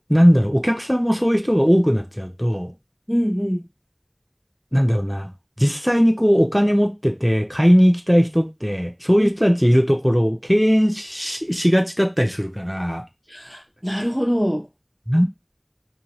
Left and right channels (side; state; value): both; identical; correlation 1.00